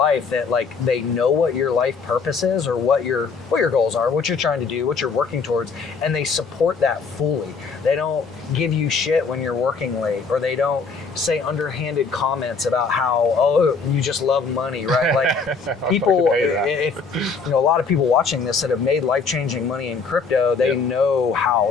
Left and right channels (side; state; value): right; quieter; 4.9 dB